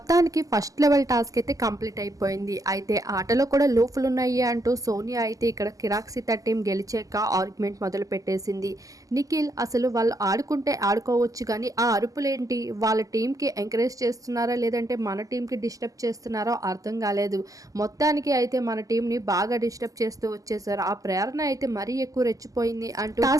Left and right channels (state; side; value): late; left; 0.17 ms